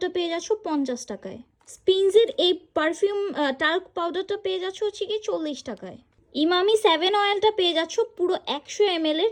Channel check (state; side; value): identical; both; correlation 1.00